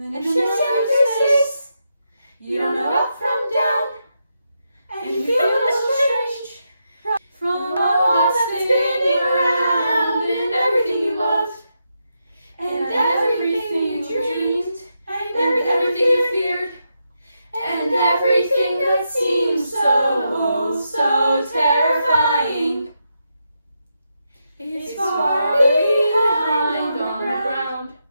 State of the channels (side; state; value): both; inverted; correlation -0.84